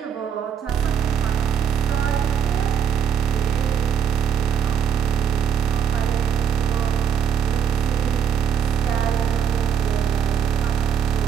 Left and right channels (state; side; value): quieter; left; 8.1 dB